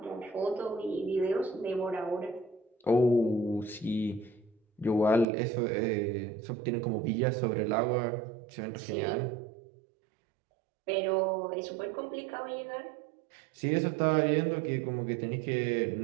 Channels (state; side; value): drops out; left; at 5.2 s